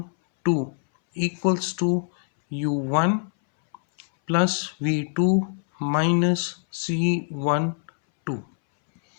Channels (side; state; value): right; silent; 62 dB below the other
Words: 2 equals to U1 plus V2 minus C1 2।